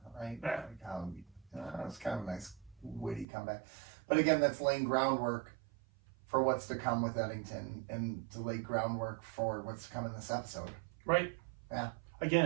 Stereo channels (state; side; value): drops out; left; at 3.2 s